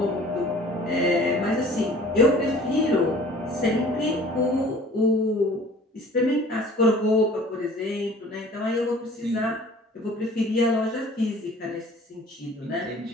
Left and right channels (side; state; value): both; normal; correlation 0.49